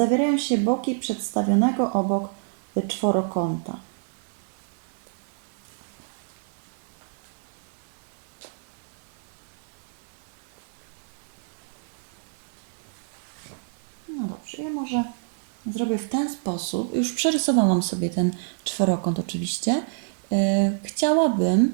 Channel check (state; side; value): silent; left; digital silence